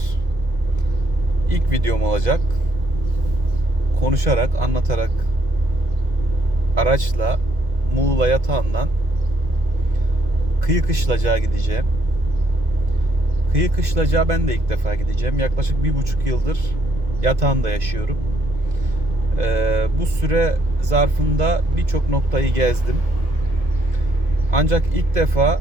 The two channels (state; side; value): late; left; 2.0 ms